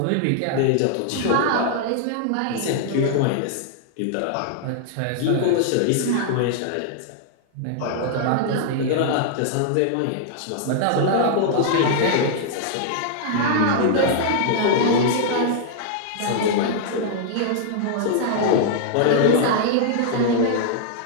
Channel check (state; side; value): different; both; correlation -0.01